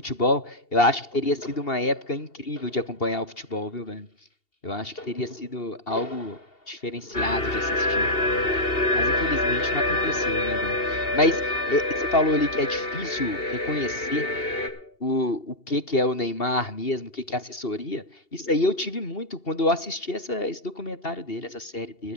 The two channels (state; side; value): late; right; 2.8 ms